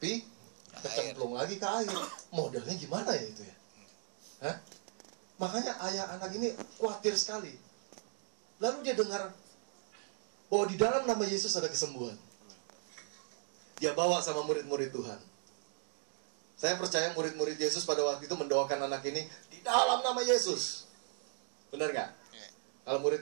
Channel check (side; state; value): left; silent; 53 dB below the other